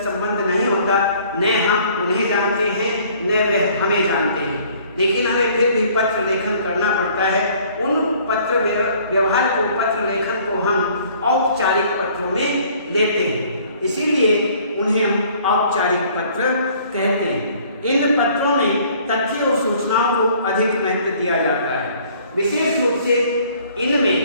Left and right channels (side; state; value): both; inverted; correlation -0.57